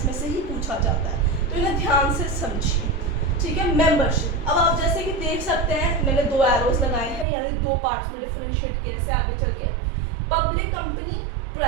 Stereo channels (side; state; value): left; drops out; at 7.2 s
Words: में से ही पूछा जाता है, तो इन्हें ध्यान से समझिए. ठीक है. मेंबरशिप. अब आप जैसे कि देख सकते हैं मैंने 2 एरोज लगाए हैं, यानी 2 पार्ट्स में डिफरेंशिएट किया से आगे चल के. Public company,